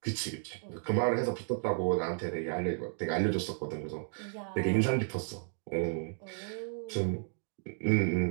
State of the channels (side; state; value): left; silent; 56 dB below the other